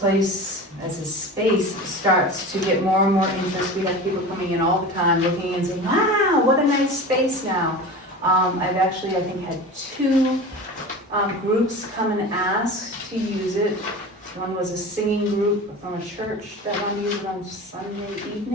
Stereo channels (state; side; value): normal; both; correlation 0.32